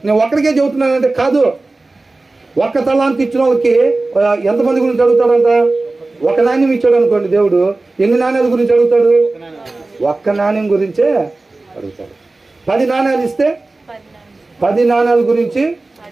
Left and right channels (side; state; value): left; quieter; 3.2 dB